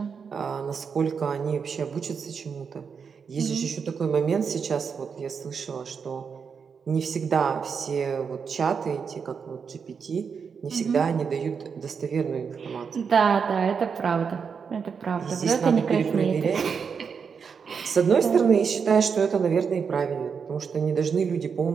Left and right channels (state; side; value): quieter; left; 6.1 dB